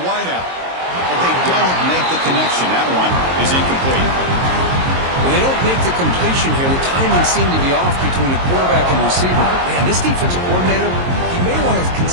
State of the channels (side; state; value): left; late; 22 ms